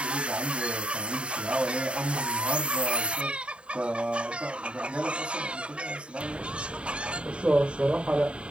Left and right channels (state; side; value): late; left; 0.056 ms